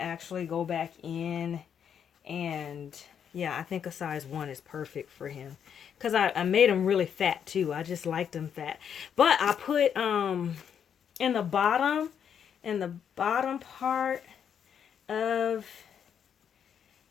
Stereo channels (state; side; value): quieter; right; 8.1 dB